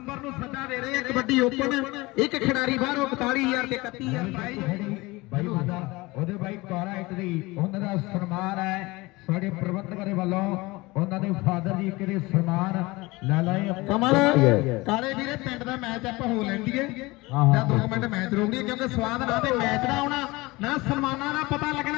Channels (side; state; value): right; quieter; 22.2 dB